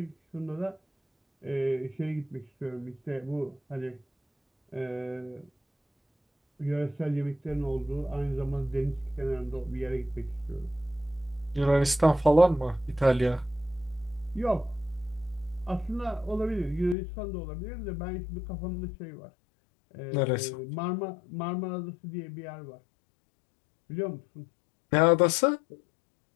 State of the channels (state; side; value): drops out; right; at 16.9 s